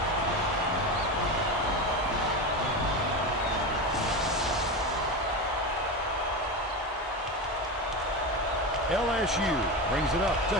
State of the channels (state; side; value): normal; both; correlation 0.20